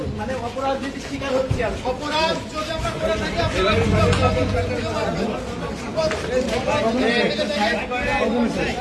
মানে অপরাধ যদি স্বীকার হচ্ছে, অপরাধ যদি আমরা করে থাকি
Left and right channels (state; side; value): identical; both; correlation 1.00